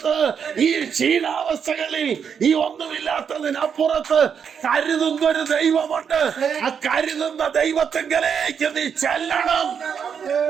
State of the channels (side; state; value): left; quieter; 7.1 dB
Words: ഈ ക്ഷീണാവസ്ഥകളിൽ, ഈ ഒന്നുമില്ലാത്തതിനപ്പുറത്ത് കരുതുന്ന ഒരു ദൈവമുണ്ട്. ആ കരുതുന്ന ദൈവത്തിങ്കലേക്ക് നീ ചെല്ലണം.